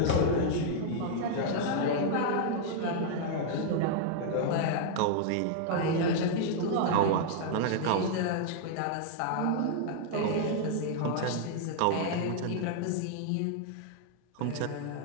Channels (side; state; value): both; different; correlation 0.00